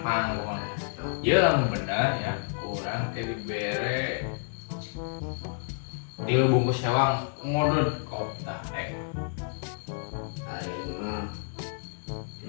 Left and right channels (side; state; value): right; silent; digital silence